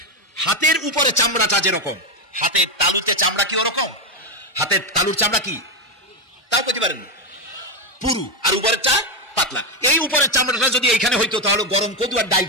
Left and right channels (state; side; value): normal; both; correlation 0.07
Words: হাতের উপরে চামড়াটা যেরকম, হাতের তালুতে চামড়া কি ওরকম? হাতের তালুর চামড়া কি তাও পেতে পারেন পুরু, আর উপরের চা পাতলা। এই উপরের চামড়াটা যদি এইখানে হইতো তাহলে গরম কদু আর ডাল